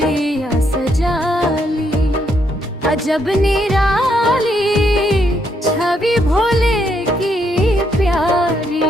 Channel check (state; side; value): normal; both; correlation 0.75